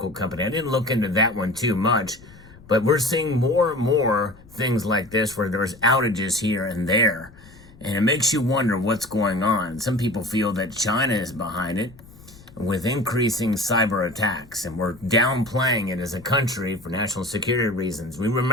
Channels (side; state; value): left; noise; rumble, 22 dB below the sound